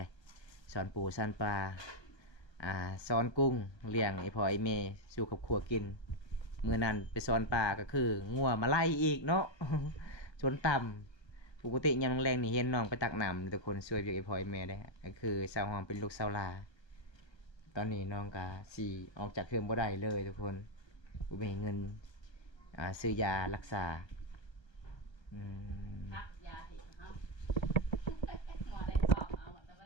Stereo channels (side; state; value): right; late; 1.3 ms